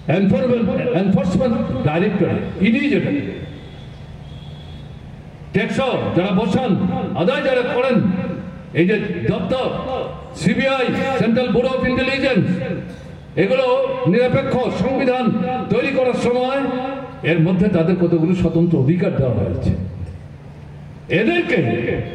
এনফোর্সমেন্ট ডাইরেক্টর, ইডি যেটা ট্যাক্স যারা বসান, আদায় যারা করেন, এই যে দপ্তর, CBI, central bureau of intelligence, এগুলো নিরপেক্ষ সংবিধান তৈরি করার সময় এর মধ্যে তাদের কতগুলো স্বতন্ত্র অধিকার দেওয়া হয়েছে। এদেরকে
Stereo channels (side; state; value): both; identical; correlation 1.00